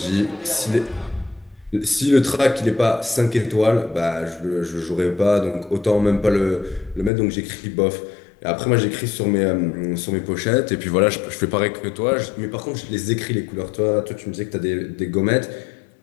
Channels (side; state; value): right; drops out; at 7.1 s